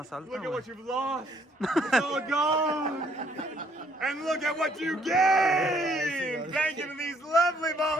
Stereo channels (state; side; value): normal; both; correlation 0.66